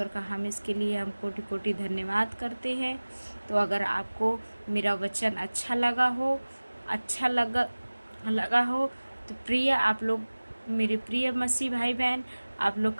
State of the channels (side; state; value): both; inverted; correlation -1.00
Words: का हम इसके लिए हम कोटि कोटि धन्यवाद करते हैं। तो अगर आपको मेरा वचन अच्छा लगा हो तो प्रिय आप लोग, मेरे प्रिय मसीह भाई बहन, आप लोग